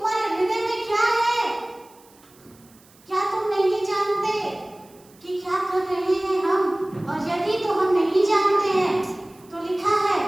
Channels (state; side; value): noise; right; hiss, 28 dB below the sound